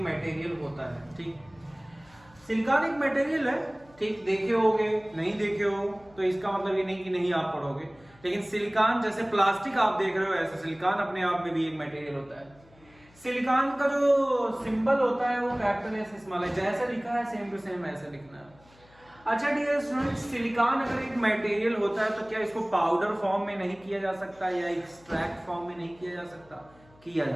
मटेरियल होता है। ठीक, सिलिकॉन एक मटेरियल है। ठीक, देखे होगे, नहीं देखे हो तो इसका मतलब ये नहीं कि नहीं आप पढ़ोगे, लेकिन सिलिकॉन जैसे प्लास्टिक आप देख रहे हो, ऐसे सिलिकॉन अपने आप में भी एक मटेरियल होता है। सिलिकॉन का जो सिंबल होता है वो कैपिटल एस स्मॉल है, जैसे लिखा है सेम टू सेम ऐसे लिखना है। अच्छा डियर स्टूडेंट्स, सिलिकॉन अगर एक मटेरियल होता है तो क्या इसको पाउडर फॉर्म में नहीं किया जा सकता या एक्सट्रैक्ट फॉर्म में नहीं किया जा सकता? किया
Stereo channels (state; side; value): noise; left; hum, 27 dB below the sound